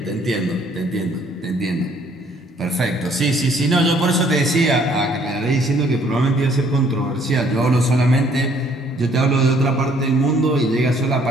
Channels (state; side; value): normal; both; correlation 0.62